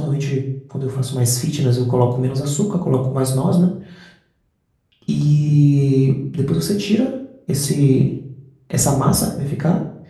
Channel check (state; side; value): identical; both; correlation 1.00